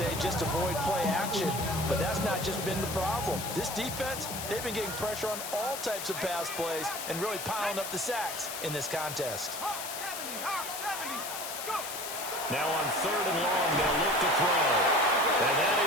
just avoid play action, but that's not just been the problem. This defense, they've been getting pressure on all types of pass plays and really piling up the sacks in this contest. Now on 3rd and long, they'll look to throw.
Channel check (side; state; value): left; noise; hiss, 6 dB below the sound